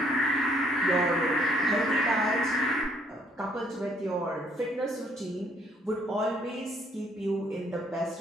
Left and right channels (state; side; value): normal; both; correlation 0.66